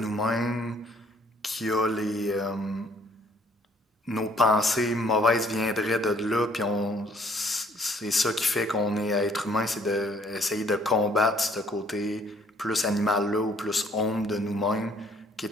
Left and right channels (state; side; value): normal; both; correlation 0.62